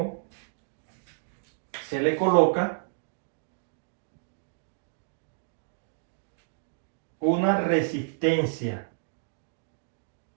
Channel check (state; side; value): silent; left; digital silence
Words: se le coloca una resistencia.